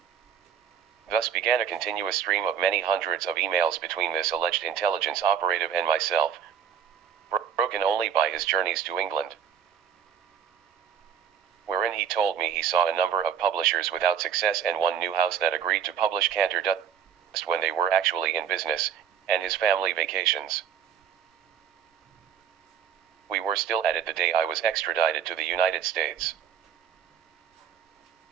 Thus began a continuous stream of many hundreds of emails between this alleged intelligence operative and myself, broken only by his journeys to England, wherein he told me he saw a number of publishers without success and one new house that agreed to publish Cantor Dust when they were actually in business, and his family vacations. We were still at it the day I was extradited to the United States.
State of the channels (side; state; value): left; quieter; 8.3 dB